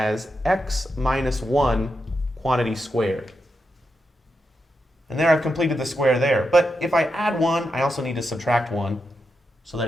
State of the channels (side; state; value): both; normal; correlation 0.86